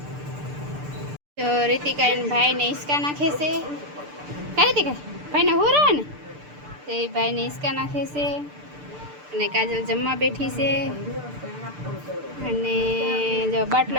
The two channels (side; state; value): left; late; 6.8 ms